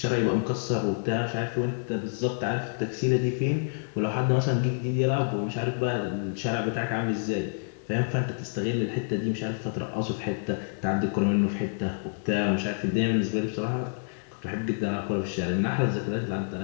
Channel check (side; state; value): right; silent; digital silence